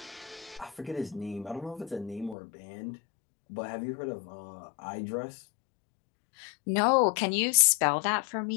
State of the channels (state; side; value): drops out; right; at 2.4 s